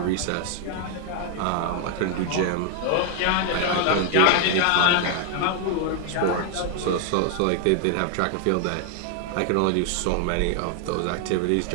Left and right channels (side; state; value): both; different; correlation 0.00